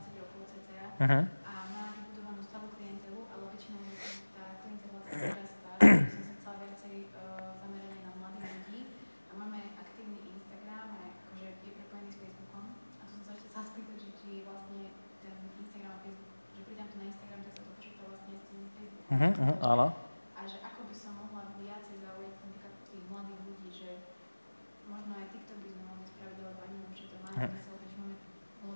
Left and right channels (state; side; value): inverted; both; correlation -1.00